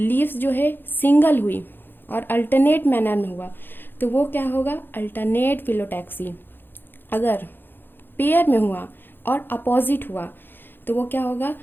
जो है सिंगल हुई और अल्टरनेट मैनर में हुआ तो वो क्या होगा? Alternate phyllotaxy. अगर पेयर में हुआ और अपोजिट हुआ तो वो क्या होगा?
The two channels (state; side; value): late; right; 0.098 ms